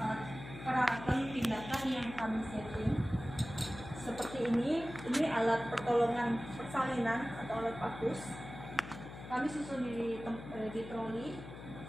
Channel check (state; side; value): noise; left; hum, 12 dB below the sound